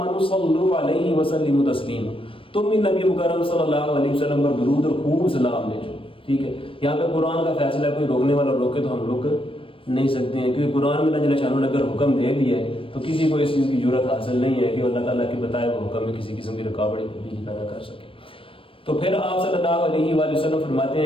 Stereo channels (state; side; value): late; right; 0.26 ms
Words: صلوا علیہ وسلموا تسلیما، تم بھی نبی مکرم صلی اللہ علیہ وسلم پر درود اور خوب سلام بھیجو. ٹھیک ہے، یہاں پہ قرآن کا فیصلہ ہے، کوئی روکنے والا روکے تو ہم روک نہیں سکتے ہیں، کیونکہ قرآن میں اللہ جل شانہ نے اگر حکم دے دیا ہے تو کسی کو اس چیز کی ضرورت حاصل نہیں ہے کہ اللہ تعالیٰ کے بتائے وہ حکم میں کسی قسم کی رکاوٹ تبدیلی پیدا کر سکے. تو پھر آپ صلی اللہ علیہ وآلہ وسلم فرماتے